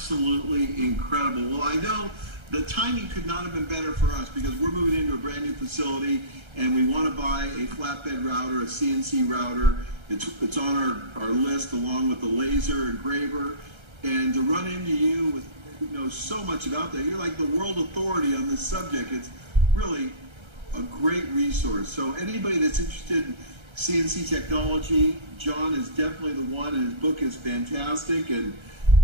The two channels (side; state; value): left; late; 1.3 ms